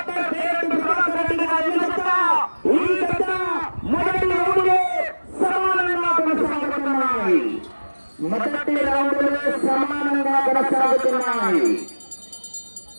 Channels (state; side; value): inverted; both; correlation -1.00